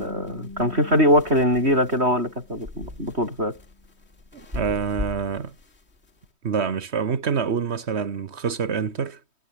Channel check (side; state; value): left; late; 3.1 ms